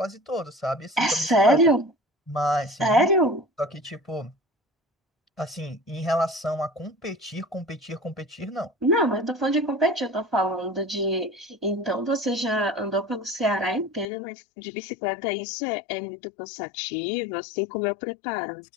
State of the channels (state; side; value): drops out; right; at 14.1 s